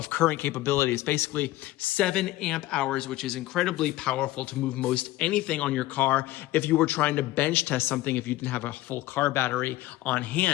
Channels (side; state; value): right; quieter; 16.7 dB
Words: current capabilities, basically 7 amp hours, which is incredibly powerful to move most anything on your car if you were trying to bench test something if you didn't have a full car battery on